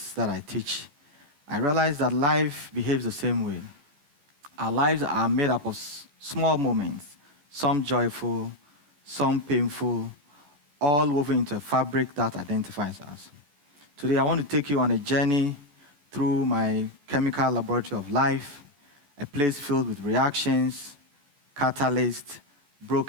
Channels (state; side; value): late; left; 14 ms